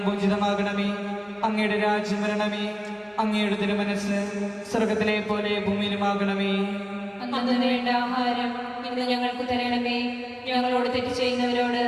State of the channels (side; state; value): both; identical; correlation 1.00